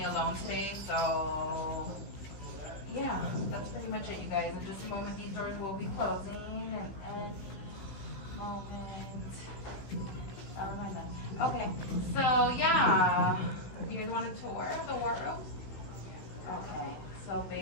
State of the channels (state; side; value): late; right; 16 ms